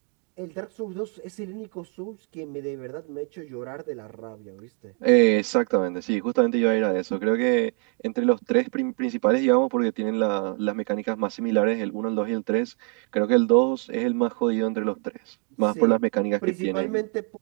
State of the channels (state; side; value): quieter; left; 35.9 dB